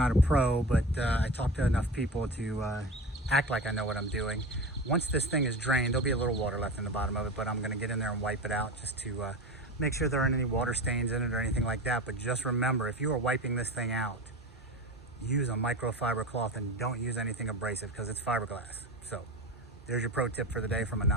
a pro, but I talked to enough people to act like I know what I'm doing. Once this thing is drained, there'll be a little water left in the bottom of it, but I'm going to get in there and wipe it out just to make sure there aren't any water stains in it or anything like that. But just remember, if you are wiping this thing out, use a microfiber cloth and don't use anything abrasive, because it's fiberglass. So there's your pro tip for the day from a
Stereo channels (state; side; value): normal; both; correlation 0.28